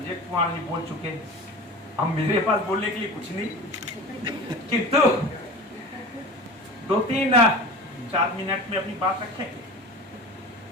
कुमार जी बोल चुके। अब मेरे पास बोलने के लिए कुछ नहीं, किंतु 2-3-4 मिनट में अपनी बात रखेंगे।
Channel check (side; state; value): both; normal; correlation 0.34